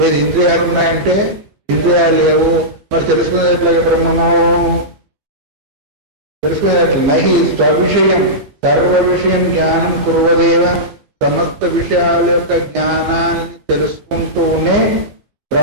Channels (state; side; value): late; left; 15 ms